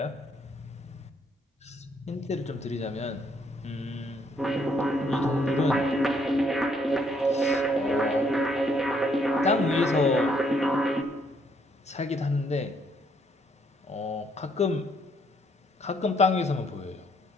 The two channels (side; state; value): both; normal; correlation 0.69